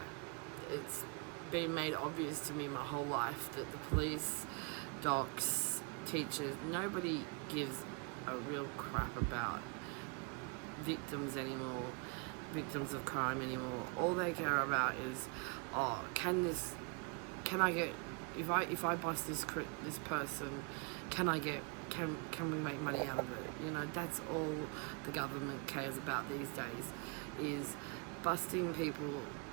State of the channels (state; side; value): quieter; left; 34.6 dB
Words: It's been made obvious to me my whole life that the police, docs, teachers, nobody gives a real crap about victims anymore, victims of crime anymore. All they care about is, can I get, if I bust this person, can we make money out of it? That's all the government cares about these days, is busting people,